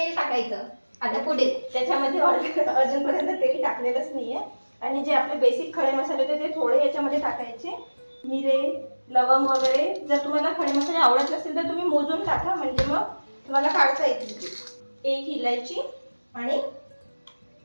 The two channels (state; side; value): inverted; both; correlation -1.00